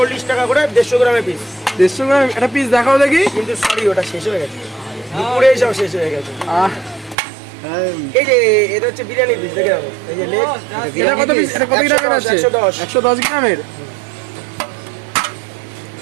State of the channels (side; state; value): left; drops out; at 7.2 s